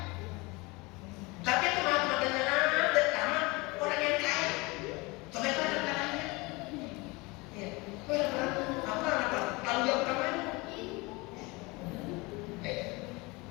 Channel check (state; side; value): quieter; right; 25.0 dB